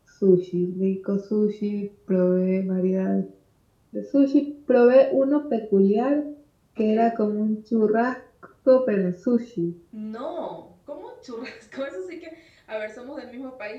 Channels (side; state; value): both; identical; correlation 1.00